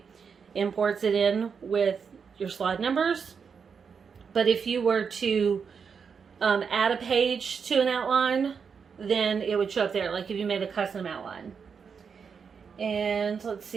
imports it in with your slide numbers. But if you were to add a page to an outline, then it would show up there, like if you made a custom outline. And let's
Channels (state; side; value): quieter; left; 6.2 dB